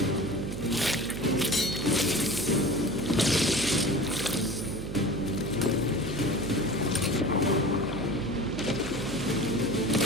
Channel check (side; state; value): right; noise; hum, 7 dB below the sound